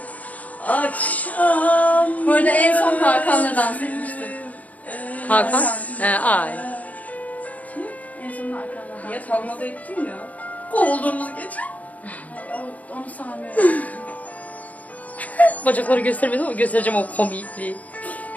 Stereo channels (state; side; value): late; right; 0.073 ms